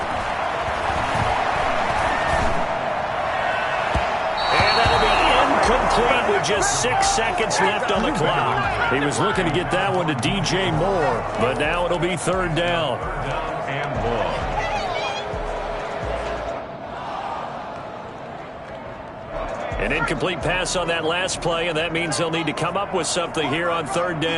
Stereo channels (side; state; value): both; identical; correlation 1.00